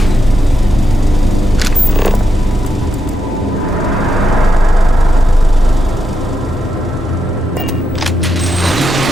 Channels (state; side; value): normal; both; correlation 0.84